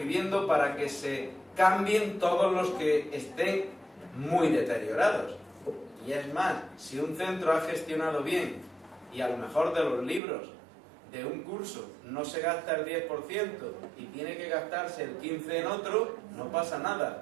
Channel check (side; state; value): left; drops out; at 10.2 s